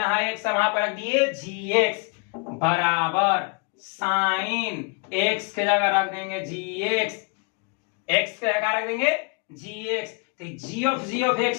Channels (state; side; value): quieter; right; 34.6 dB